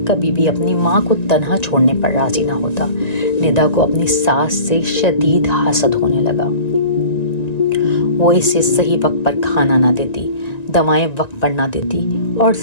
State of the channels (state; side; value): late; right; 1.9 ms